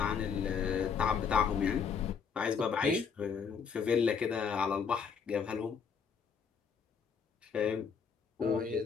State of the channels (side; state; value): right; quieter; 6.4 dB